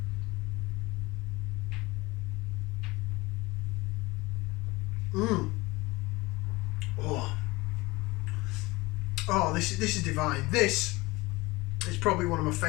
Mmm. Oh. Oh, this is divine. This is probably one of my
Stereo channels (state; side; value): quieter; right; 22.1 dB